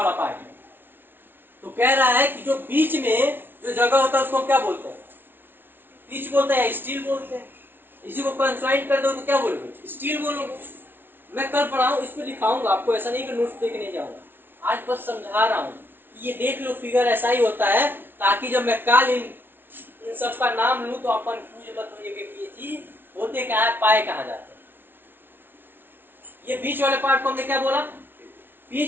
पार्ट है। तो कह रहा है कि जो बीच में जो जगह होता है उसको क्या बोलते हैं, बीच बोलते हैं, स्टील बोलते हैं। इसी को कंसाइड कर दो तो क्या बोलोगे, स्टील बोलोगे। मैं कल पढ़ाऊं, इसको दिखाऊंगा आपको, ऐसा नहीं कि नोट्स देखने जाऊंगा, आज बस समझा रहा हूं। ये देख लो, फिगर ऐसा ही होता है, ताकि जब मैं कल इन सब का नाम लूं तो अपन पूछ मत होइए कि ये चीज होते क्या है, पाए कहां जाते हैं। ये बीच वाले पार्ट को हमने क्या बोला,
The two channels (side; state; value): left; late; 0.10 ms